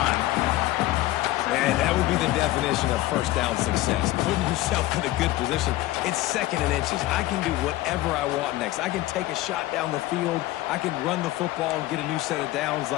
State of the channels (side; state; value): right; quieter; 16.8 dB